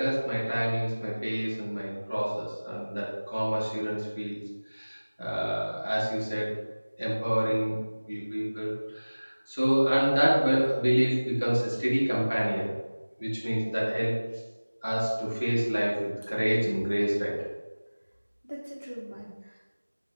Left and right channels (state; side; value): inverted; both; correlation -1.00